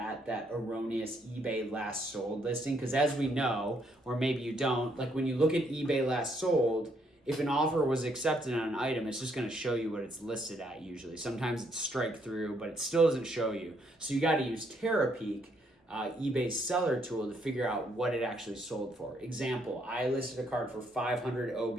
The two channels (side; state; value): both; normal; correlation 0.72